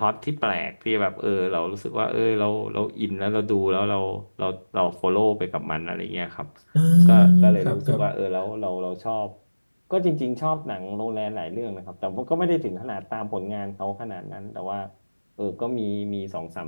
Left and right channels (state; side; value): inverted; both; correlation -1.00